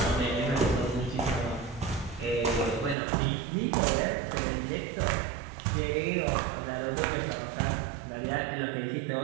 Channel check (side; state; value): left; drops out; at 3.0 s